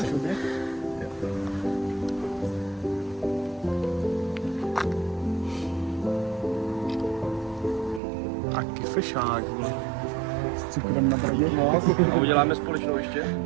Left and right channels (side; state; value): left; drops out; at 8.0 s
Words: Taky fešák. S cukrem na bradě. A uděláme společnou ještě?